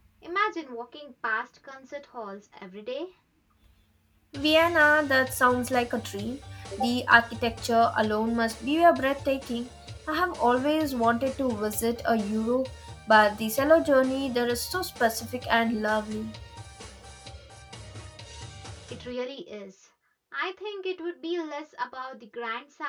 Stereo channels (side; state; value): both; identical; correlation 1.00